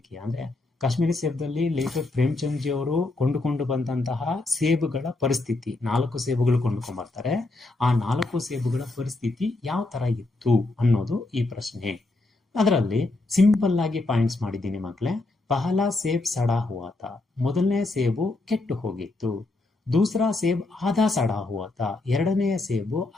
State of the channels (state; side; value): quieter; right; 3.0 dB